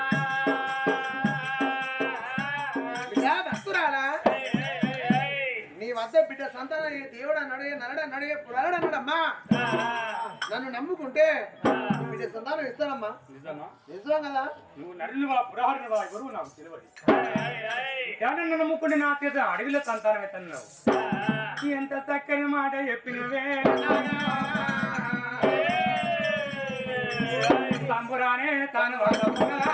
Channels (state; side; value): identical; both; correlation 1.00